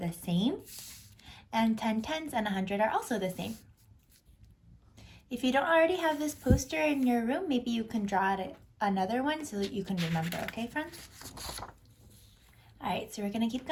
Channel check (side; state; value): both; identical; correlation 1.00